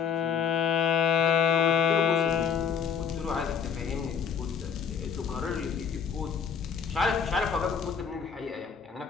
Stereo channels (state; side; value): quieter; right; 6.9 dB